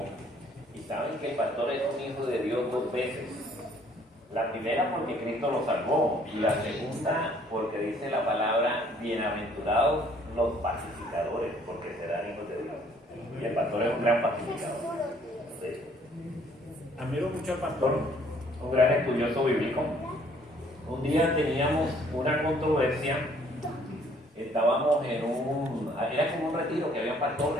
Y saben que el pastor es un hijo de Dios dos veces. La primera porque Cristo lo salvó, y la segunda porque dice la palabra: bienaventurados los pacificadores, porque serán hijos de Dios. Y el pastor es un gran pacificador. Sí. Admiro mucho al pastor, un gran estudioso bíblico. Un día teníamos una controversia. Estábamos era como un retiro que había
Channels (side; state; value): both; normal; correlation 0.61